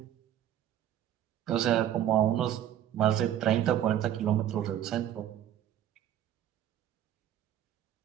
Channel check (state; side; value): quieter; left; 11.2 dB